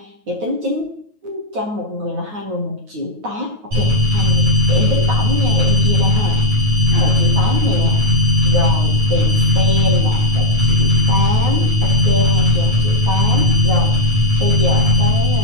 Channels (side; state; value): left; late; 9.3 ms